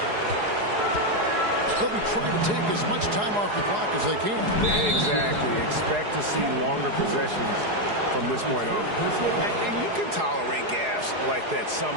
They'll be trying to take as much time off the clock as they can. Exactly. Expect to see longer possessions from this point on. And you can tolerate gaps like that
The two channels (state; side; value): late; left; 4.8 ms